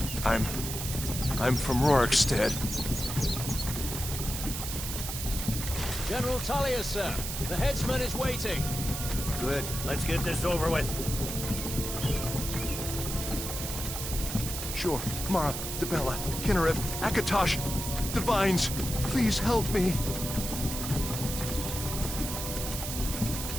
I'm from Rorikstead. General Tullius, sir. The headsman is waiting. Good. Let's get this over with. Sure. Mara, Debella, Kinnarev, Akatosh, Divines, please help me.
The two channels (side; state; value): right; noise; hiss, 5 dB below the sound